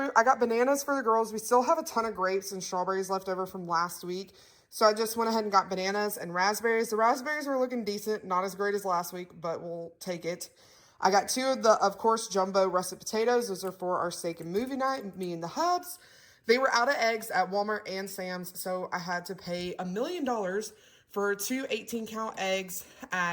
I got bananas for the girls. We still have a ton of grapes and strawberries left over from last week. So I just went ahead and got bananas and raspberries. The raspberries were looking decent, not as great as last week, but we'll take it. I got 2 of the, of course, jumbo russet potatoes. Those are for our steak and movie night, me and the hubs. They were out of eggs at Walmart and Sam's, so I had to pay $1 million for 2 18-count eggs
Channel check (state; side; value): identical; both; correlation 1.00